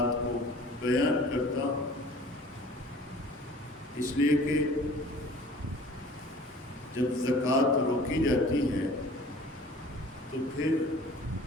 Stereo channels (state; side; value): normal; both; correlation 0.48